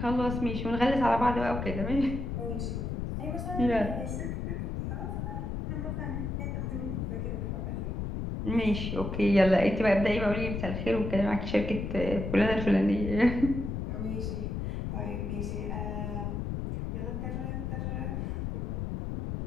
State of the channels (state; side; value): noise; left; rumble, 3 dB below the sound